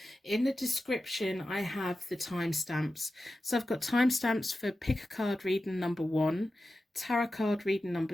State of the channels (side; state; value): both; normal; correlation 0.93